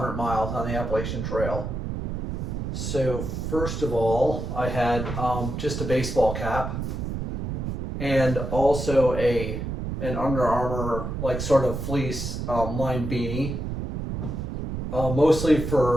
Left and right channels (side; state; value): right; noise; rumble, 4 dB below the sound